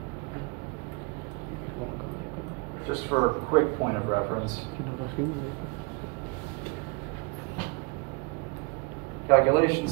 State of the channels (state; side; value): quieter; left; 30.3 dB